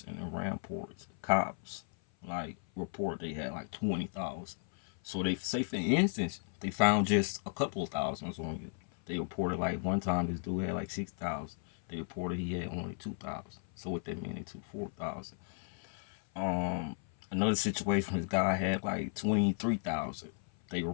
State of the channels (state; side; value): silent; right; 54 dB below the other